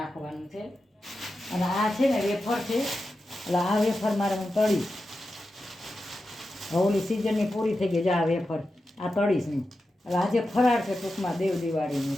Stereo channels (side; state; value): both; normal; correlation 0.91